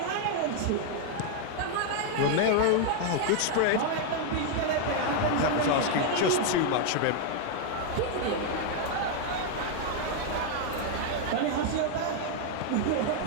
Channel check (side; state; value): both; different; correlation 0.00